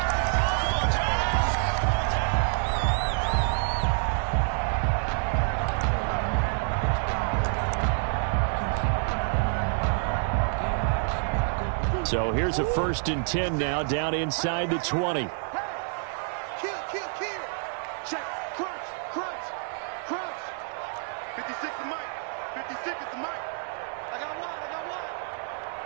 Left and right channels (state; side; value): silent; left; 59 dB below the other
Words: line. So here's a 1st and 10 now down inside the 20.